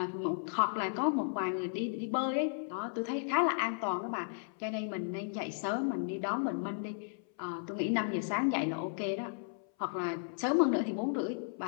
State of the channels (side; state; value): right; silent; 55 dB below the other